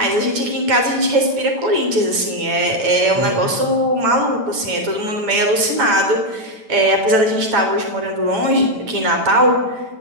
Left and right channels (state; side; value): late; left; 9.1 ms